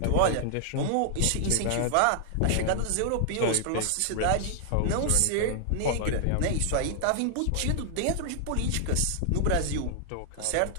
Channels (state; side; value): different; both; correlation 0.00